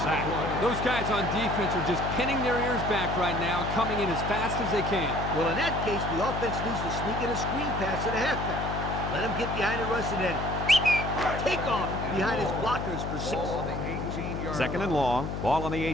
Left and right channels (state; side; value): noise; left; hum, 4 dB below the sound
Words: sack. Those guys on defense are just pinning their ears back right now and coming in as fast as they can. Well, in that case, the offense needs to sneak in a screen pass to the halfback. Let him get behind the rush and then take off behind his blockers for 6. Ball on the 18-yard Second and long. Ball on the